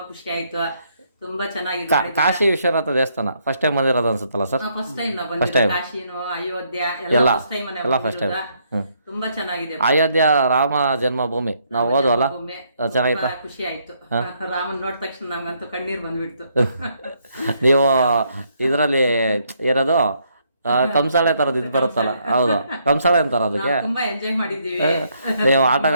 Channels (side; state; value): both; inverted; correlation -0.72